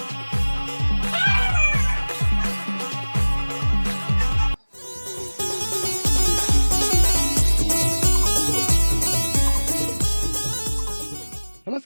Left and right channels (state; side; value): inverted; both; correlation -1.00